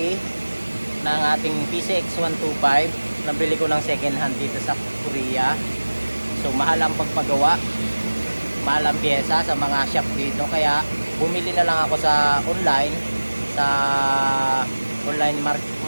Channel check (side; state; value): both; inverted; correlation -1.00